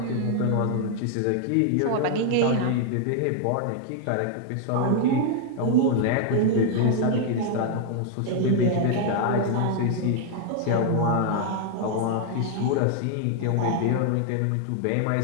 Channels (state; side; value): different; both; correlation 0.00